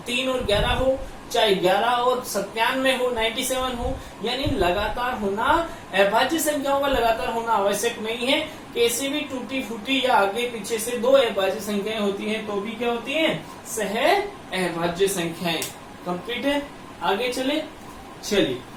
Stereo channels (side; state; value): both; identical; correlation 1.00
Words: और 11 हो, चाहे 11 और 97 हो, 97 हो, यानी लगातार होना, अभाज्य संख्याओं का लगातार होना आवश्यक नहीं है। कैसे भी टूटी फूटी या आगे पीछे से दो अभाज्य संख्याएं होती हैं तो भी क्या होती हैं? सहअभाज्य संख्याएं। कंप्लीट है? आगे चलिए।